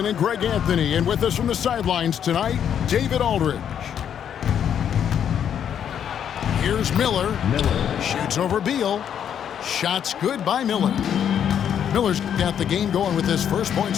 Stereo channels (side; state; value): right; quieter; 8.9 dB